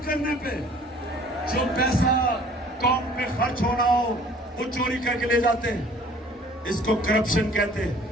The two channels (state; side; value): normal; both; correlation 0.53